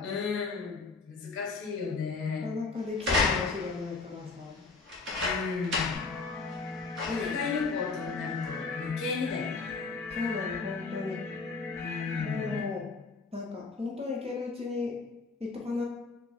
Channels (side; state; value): right; quieter; 4.2 dB